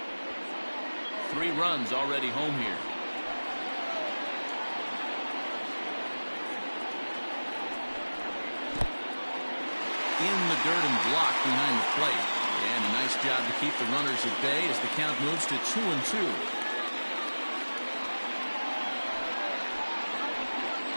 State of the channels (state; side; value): inverted; both; correlation -1.00